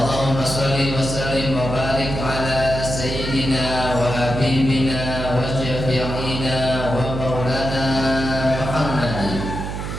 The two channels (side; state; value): right; noise; hum, 5 dB below the sound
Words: shalli wa sallim wa barik ala sayyidina wa habibina wa syafi'ina wa maulana Muhammadin